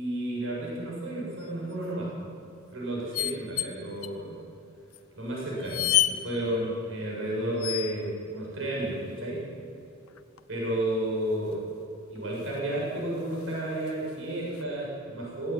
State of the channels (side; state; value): both; normal; correlation 0.31